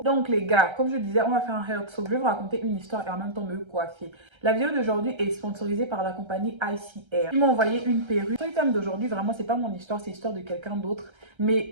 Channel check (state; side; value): late; left; 1.3 ms